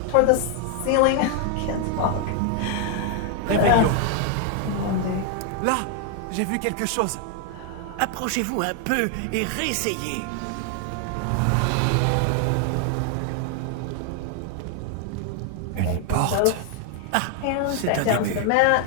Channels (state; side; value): different; both; correlation 0.00